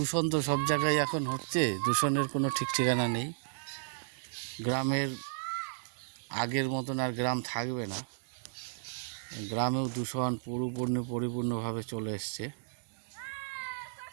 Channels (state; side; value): silent; left; digital silence